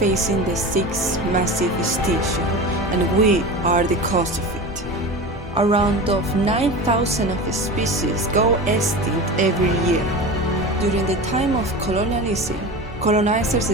the sixth massive extinction, and we are the cause of it. Around 9,000 of species go extinct every year. During the time of colonialism, colonizers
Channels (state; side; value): normal; both; correlation 0.30